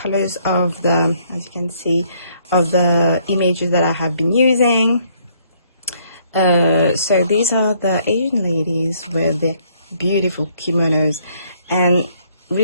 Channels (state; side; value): inverted; both; correlation -0.67